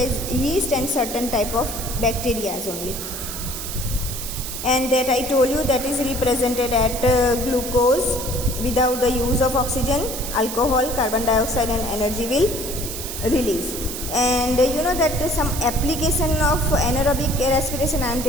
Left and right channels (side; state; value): right; noise; hiss, 7 dB below the sound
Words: yeast and certain type of bacteria only. And that I told you, that is represented at glucose without the use of oxygen, alcohol, carbon dioxide and energy will release. And that some application of anaerobic respiration I am